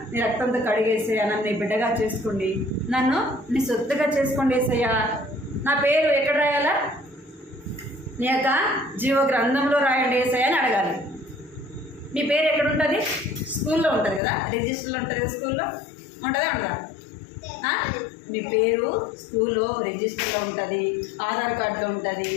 నీ రక్తంతో కడిగేసయ్యా, నన్ను నీ బిడ్డగా చేసుకోండి, నన్ను నీ సొత్తుగా చేసుకోండి యేసయ్యా. నా పేరు ఎక్కడ రాయాలా? నీ యొక్క జీవ గ్రంథంలో రాయండి యేసయ్యా అని అడగాలి. మీ పేరు ఎక్కడ ఉంటుంది? స్కూల్లో ఉంటుంది కదా, రిజిస్టర్లో ఉంటుంది కదా. స్కూల్లో ఉంటుందా? ఉండదా? మీ పేరు స్కూల్లో రిజిస్టర్లో ఉంటుంది, ఆధార్ కార్డులో ఉంటుంది,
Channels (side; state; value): right; drops out; at 14.2 s